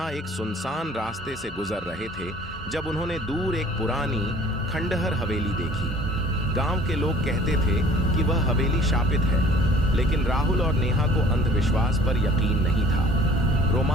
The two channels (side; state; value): both; normal; correlation 0.51